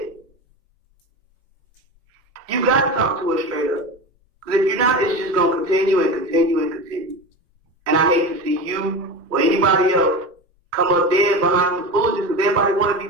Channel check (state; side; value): normal; both; correlation 0.26